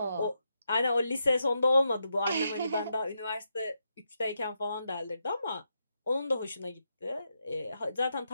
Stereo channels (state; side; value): inverted; both; correlation -0.83